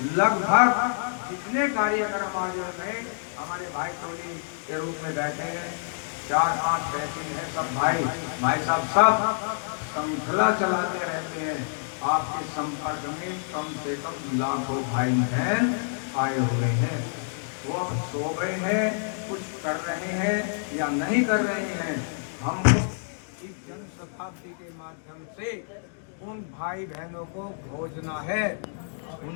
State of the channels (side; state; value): right; silent; digital silence